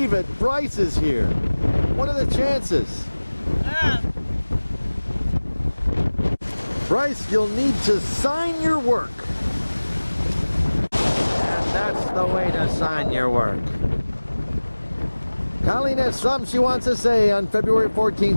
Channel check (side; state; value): both; inverted; correlation -1.00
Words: it, Bryce is here. What are the chances? Bryce, you'll need to sign your work. And that's the way to sign your work. Colleen has something she wants to say on February